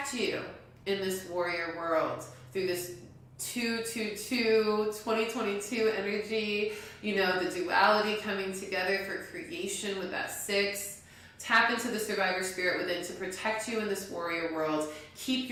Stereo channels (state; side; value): identical; both; correlation 1.00